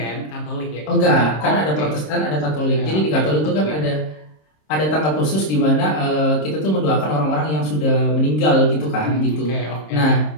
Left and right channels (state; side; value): late; right; 26 ms